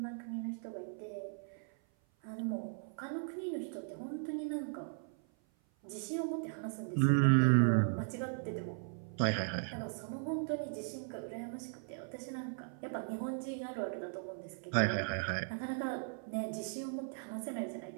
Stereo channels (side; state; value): left; silent; 53 dB below the other